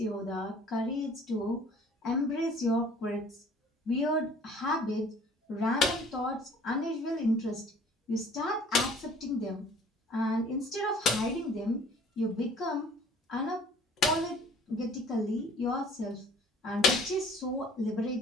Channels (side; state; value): both; normal; correlation 0.52